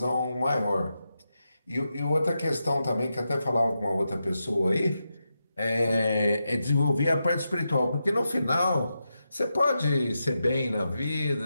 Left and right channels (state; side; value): inverted; both; correlation -0.88